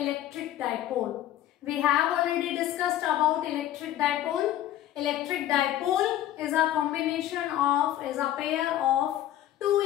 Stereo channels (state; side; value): quieter; right; 12.6 dB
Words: dipole. We have already discussed about electric dipole. Electric dipole is a pair of two